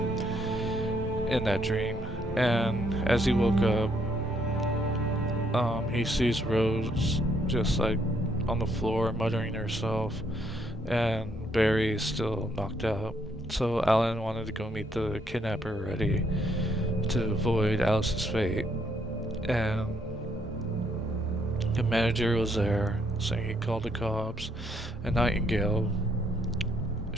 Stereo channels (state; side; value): normal; both; correlation 0.71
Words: in that dream. And as he woke up, he sees Rose just like on the floor muttering to herself, and Barry is still knocked out. So Alan wanted to go meet the kidnapper already to avoid Alice's fate, and the manager was there, saying he called the cops, and Nightingale